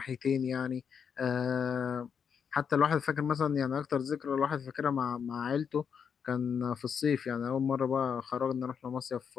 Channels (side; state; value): right; quieter; 7.0 dB